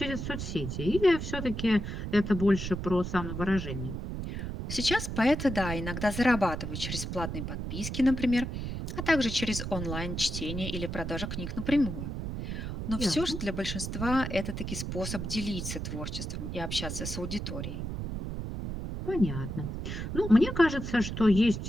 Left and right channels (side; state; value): right; noise; rumble, 5 dB below the sound